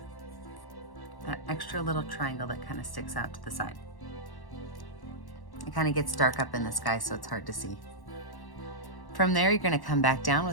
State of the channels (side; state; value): right; late; 1.1 ms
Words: That extra little triangle that kind of sticks out to the side. It kind of gets dark up in the sky, so it's hard to see. From there, you're gonna come back down